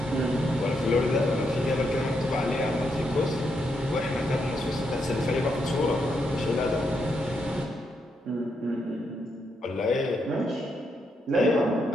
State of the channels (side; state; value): both; normal; correlation 0.80